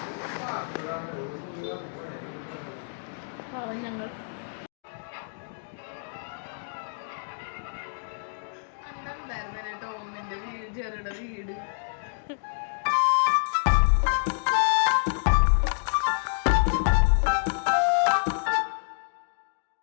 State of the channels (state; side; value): silent; right; digital silence